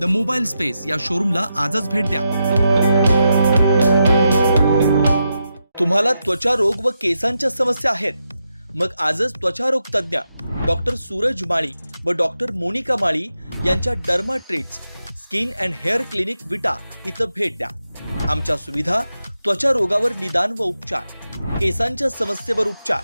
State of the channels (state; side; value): inverted; both; correlation -0.86